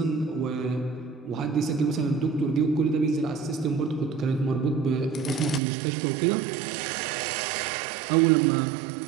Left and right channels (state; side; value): drops out; left; at 5.6 s